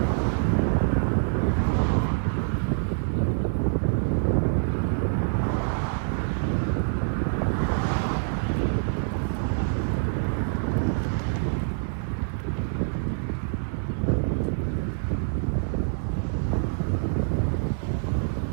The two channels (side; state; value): left; silent; digital silence